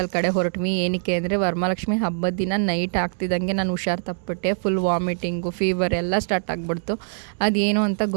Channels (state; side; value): silent; left; 62 dB below the other